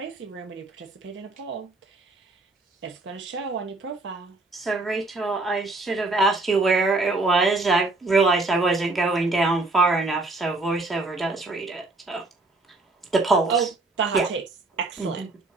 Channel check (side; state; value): left; quieter; 3.2 dB